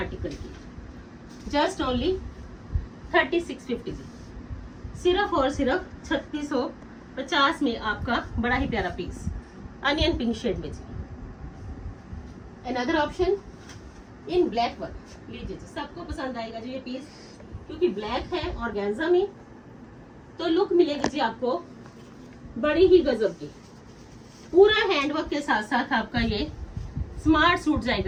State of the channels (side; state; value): both; identical; correlation 1.00